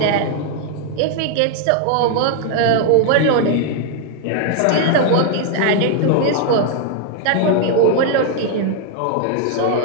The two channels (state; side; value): different; both; correlation 0.00